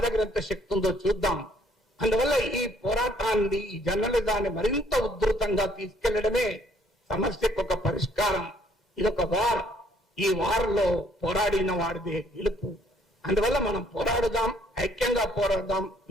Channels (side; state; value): both; normal; correlation 0.64